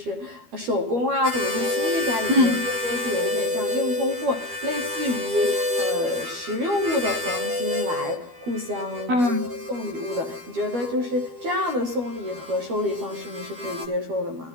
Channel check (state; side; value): late; left; 12 ms